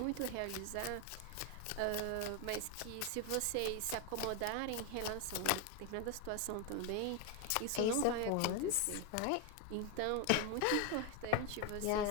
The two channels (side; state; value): both; different; correlation 0.01